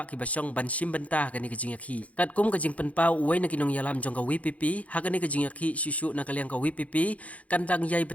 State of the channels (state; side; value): late; right; 0.067 ms